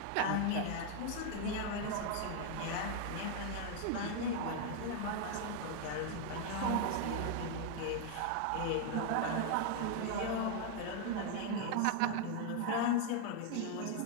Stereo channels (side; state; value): both; different; correlation 0.00